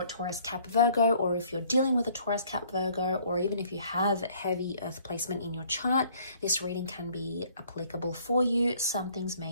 Taurus, Cap, Virgo, or if you're dealing with a Taurus, Cap, Virgo, or even if you have heavy Earth placement in your chart, this reading can be applicable for you. Some things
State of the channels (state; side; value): inverted; both; correlation -0.59